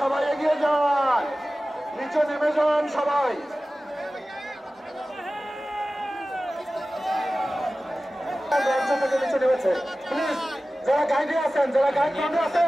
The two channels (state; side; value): normal; both; correlation 0.96